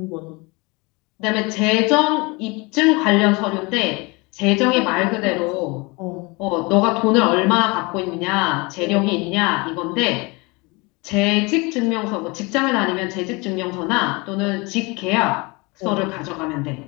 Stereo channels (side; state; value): right; quieter; 26.7 dB